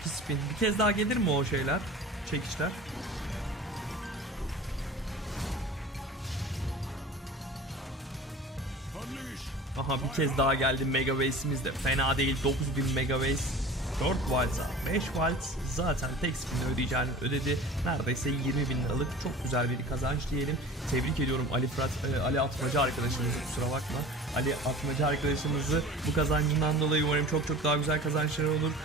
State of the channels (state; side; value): normal; both; correlation 0.39